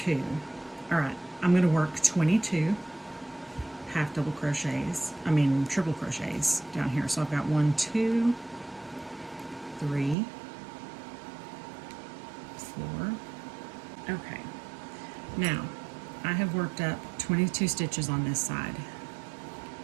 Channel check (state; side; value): drops out; left; at 10.2 s